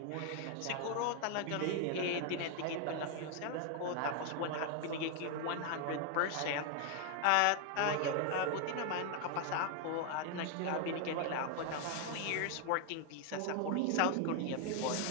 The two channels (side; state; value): both; different; correlation 0.01